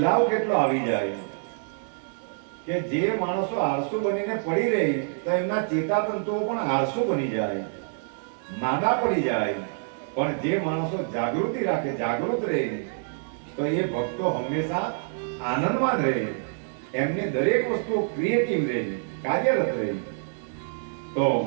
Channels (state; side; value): silent; left; digital silence